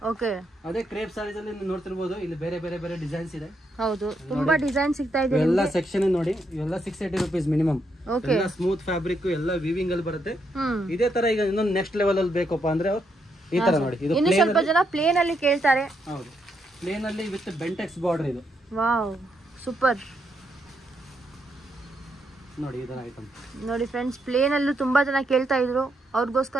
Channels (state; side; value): normal; both; correlation 0.78